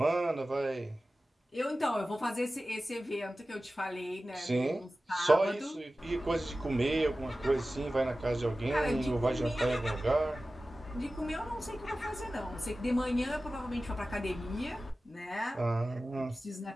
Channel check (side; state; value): both; normal; correlation 0.95